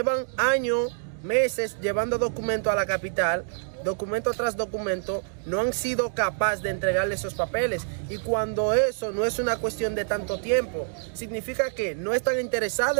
años, meses llevando documento a la capital, documento tras documento, no han sido capaces de entregarle esos papeles. Y cuando eso no es una cuestión de tanto tiempo, significa que no están interesados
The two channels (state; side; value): silent; left; digital silence